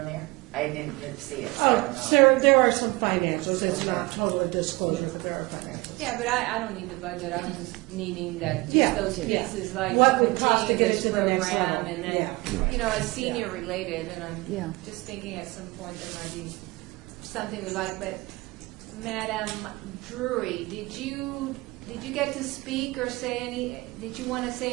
there? I didn't see it, so I don't know. So there are some financials, it's not totally disclosure, but there are financials. Yeah, but I don't need the budget. I'm just needing that, Yeah, just those yeah. pieces, like What to would cost to continue get it this to the next program, level. and then, Yeah. you know, as senior related, and Yeah. I'm just thinking at some point there might be something we like, but Madam Drury, did you get to speak or say did you want to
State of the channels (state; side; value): quieter; left; 23.0 dB